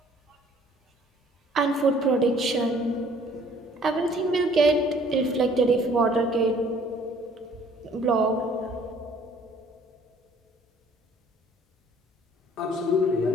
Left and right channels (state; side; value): normal; both; correlation 0.57